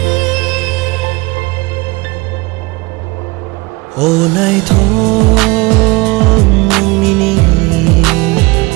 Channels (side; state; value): left; quieter; 24.0 dB